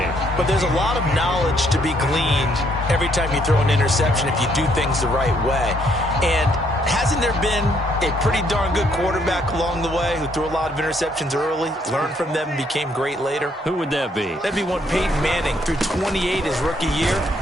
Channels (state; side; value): normal; both; correlation 0.69